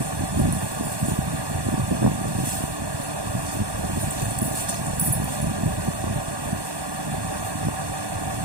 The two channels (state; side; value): late; left; 1.1 ms